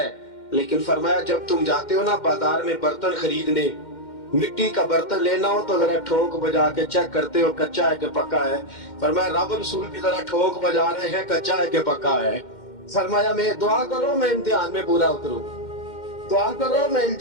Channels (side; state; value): right; late; 2.1 ms